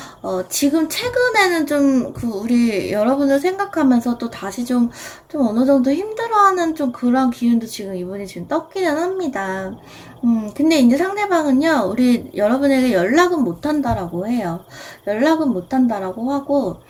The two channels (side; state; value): both; identical; correlation 1.00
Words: 최근에는 좀 우리 여러분을 생각하면서 또 다시 좀 어느 정도 힘들어하는 좀 그런 기운도 지금 이분이 지금 떴기는 합니다. 근데 이제 상대방은요, 우리 여러분에게 연락은 못한다라고 해요. 연락은 못한다라고 하고,